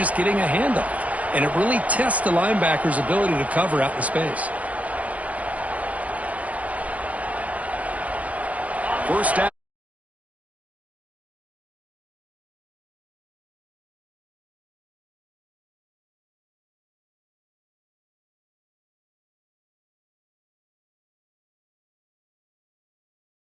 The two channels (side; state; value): left; late; 0.069 ms